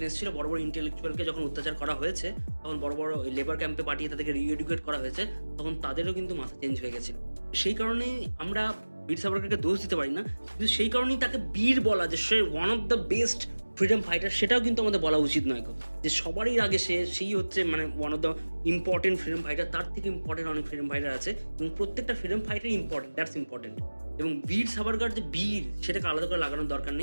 এসেছিল, বড় বড় ইন্টেলেকচুয়ালকে যখন অত্যাচার করা হয়েছে, তখন বড় বড় লেবার ক্যাম্পে পাঠিয়ে তাদেরকে রিএডুকেট করা হয়েছে, তখন তাদেরও কিন্তু মাথা চেঞ্জ হয়ে গেছিল। সেই কারণেই আমরা বীর সাভারকরকে দোষ দিতে পারি না, কিন্তু সেই কারণেই তাকে বীর বলা, যে সে one of the best freedom fighter, সেটাও কিন্তু আমাদের বলা উচিত নয়। যে সবারই আগে সেই হচ্ছে মানে one of the important freedom fighter, তার থেকে ইম্পর্টেন্ট অনেক ফ্রিডম ফাইটার আছে, এবং প্রত্যেকটা freedom fighter important, that's important. এবং বীর সাভারকর যে বীর, সেটাকে আলাদা করে লাগানোর দরকার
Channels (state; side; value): inverted; both; correlation -1.00